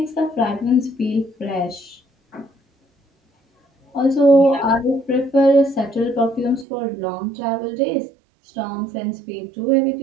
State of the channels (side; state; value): left; drops out; at 6.7 s